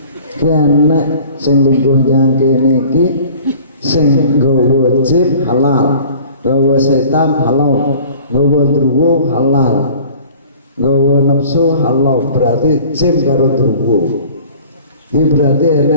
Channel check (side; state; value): both; inverted; correlation -0.48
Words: Kene sing lungguh yang kene iki sing nggawa jim halal, gawa setan halal, gawa druwo halal, gawa nafsu halal, berarti jin karo druwo. Ini berarti